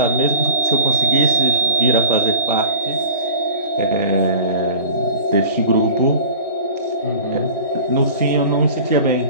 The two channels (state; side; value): inverted; both; correlation -0.38